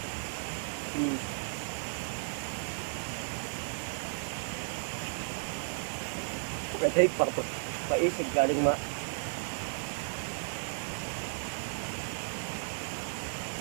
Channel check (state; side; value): silent; left; 55 dB below the other